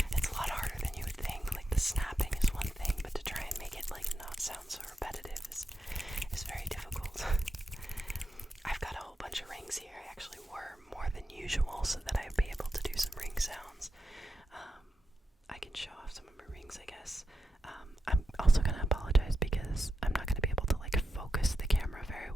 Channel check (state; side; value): normal; both; correlation 0.88